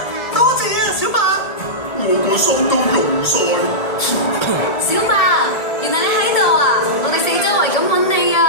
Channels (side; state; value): right; late; 1.7 ms